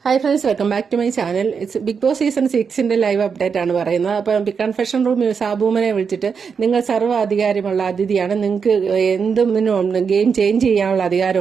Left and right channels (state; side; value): quieter; left; 6.0 dB